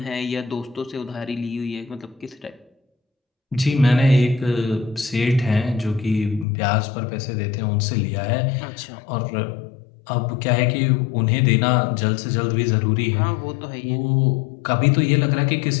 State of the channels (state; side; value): drops out; right; at 6.5 s